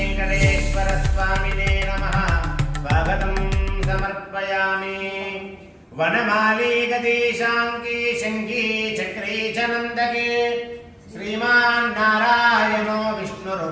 नमः स्वागतं समर्पयामि। वनमाली गतिशाङ्की शङ्की चक्रे च नन्दके श्रीमान् नारायणो विष्णुर्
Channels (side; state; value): both; identical; correlation 1.00